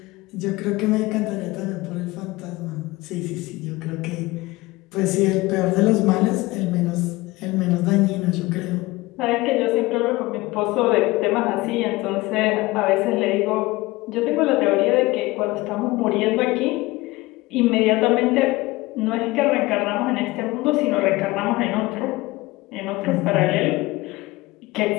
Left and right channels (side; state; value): right; quieter; 20.8 dB